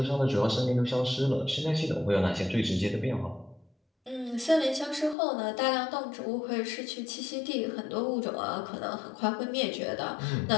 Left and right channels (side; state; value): right; drops out; at 5.2 s